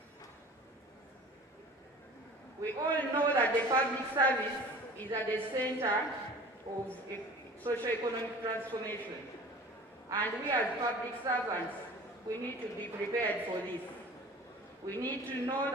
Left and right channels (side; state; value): both; normal; correlation 0.43